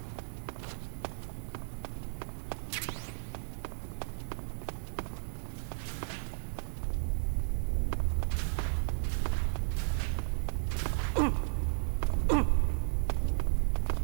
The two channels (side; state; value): left; silent; digital silence